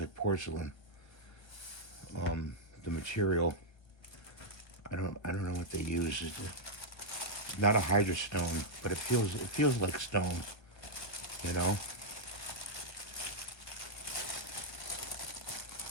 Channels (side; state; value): right; late; 1.3 ms